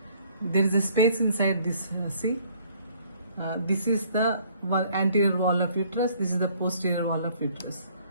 There is a space inside this, see? This is the anterior wall of uterus, this is the posterior wall of uterus.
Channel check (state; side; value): inverted; both; correlation -0.60